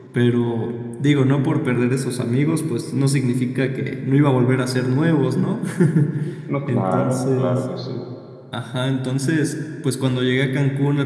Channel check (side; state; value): both; identical; correlation 1.00